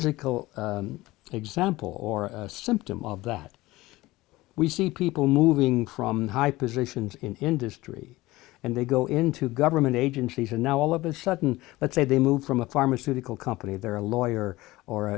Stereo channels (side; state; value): right; quieter; 19.1 dB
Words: example or a symptom of that. We see people moving from high positions in industry and they go into government agencies, and now all of a sudden, let's say they move from a pharmaceutical company, they're a lawyer or